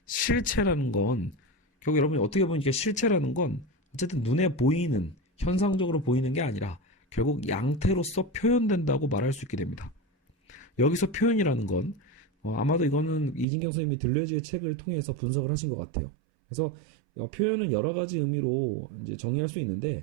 실체라는 건 결국 여러분이 어떻게 보면 이게 실체라는 건 어쨌든 눈에 보이는 현상적으로 보이는 게 아니라 결국 양태로서 표현된다고 말할 수 있게 됩니다. 여기서 표현이라는 건 아마도 이거는 이진경 선생님이 들레즈의 책을 통해서 분석을 하신 것 같아요. 그래서 표현은 여러 가지 의미로 이제 정의할 수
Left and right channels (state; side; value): drops out; left; at 13.5 s